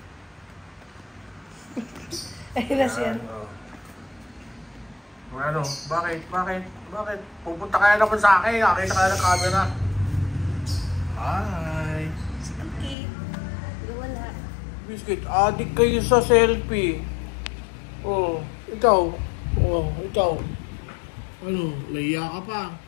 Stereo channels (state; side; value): drops out; right; at 13.0 s